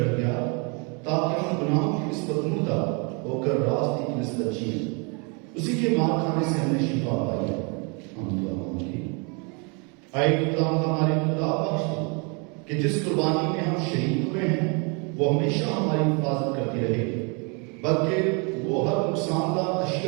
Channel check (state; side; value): quieter; left; 33.3 dB